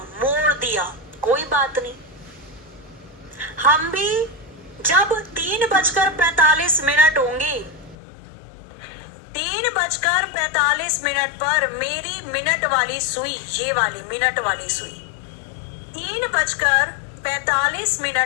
दिया। कोई बात नहीं, हम भी जब 3:45 होंगे, 3:45 पर मेरी मिनट वाली सुई, ये वाली मिनट वाली सुई,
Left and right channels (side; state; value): right; drops out; at 8.0 s